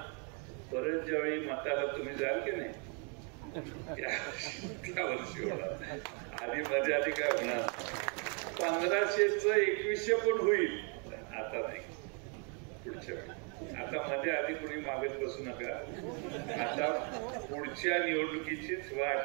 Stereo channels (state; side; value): quieter; left; 37.6 dB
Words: परत ज्यावेळी मताला तुम्ही जाल की नाही त्या वर्षी होणार. आधी काय होणार? 1500चं 2100 पण होईल, आता नाही, पुढच्या वेळी. आता मध्ये आधी कुणी मागत बसू नका. आता पुढच्या निवडणुकीचीच वाट